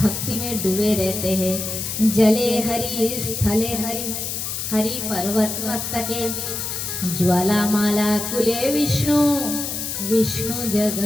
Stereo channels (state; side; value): noise; left; hiss, 4 dB below the sound